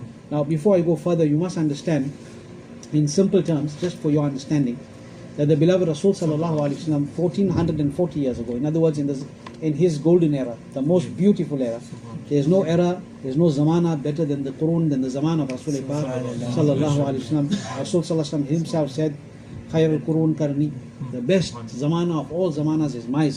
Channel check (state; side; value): identical; both; correlation 1.00